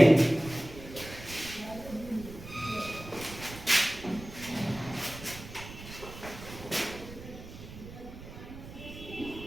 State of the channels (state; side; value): noise; right; rumble, 14 dB below the sound